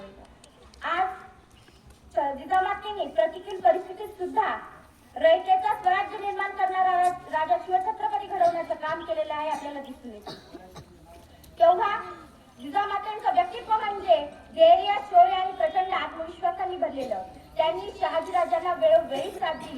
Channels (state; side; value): identical; both; correlation 1.00